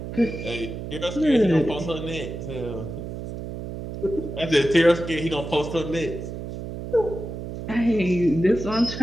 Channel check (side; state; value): right; noise; hum, 8 dB below the sound